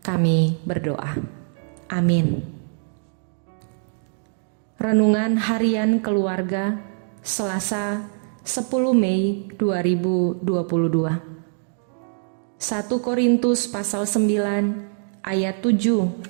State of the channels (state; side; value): silent; left; digital silence